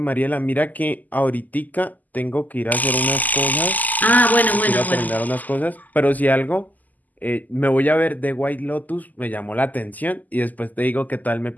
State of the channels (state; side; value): late; right; 0.081 ms